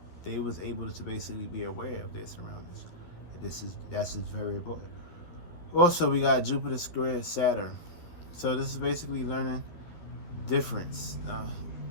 They was able to basically be aware of their surroundings. And that's just very important. Also, we got Jupiter squared Saturn. So this is basically learning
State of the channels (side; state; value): right; late; 12 ms